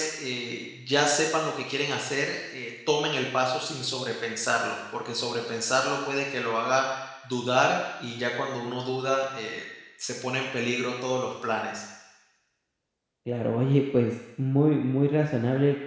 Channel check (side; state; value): both; identical; correlation 1.00